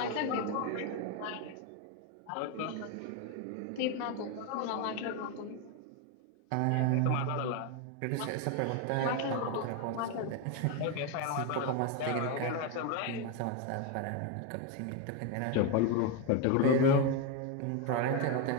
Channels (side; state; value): both; different; correlation 0.02